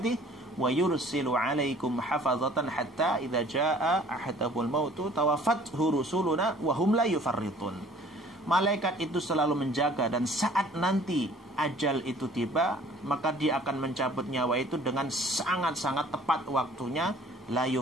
wa yursilu 'alaikum hafazatan hatta idza jaa ahadahumul mautu tawaffathu rusuluna wa hum la yufarritun. Malaikat itu selalu menjaga, dan saat nanti ajal itu tiba, maka dia akan mencabut nyawa itu dengan sangat-sangat tepat waktunya, la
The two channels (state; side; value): normal; both; correlation 0.53